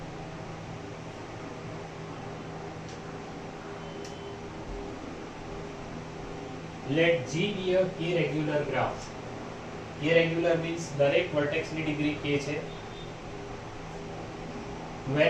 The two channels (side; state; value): both; identical; correlation 1.00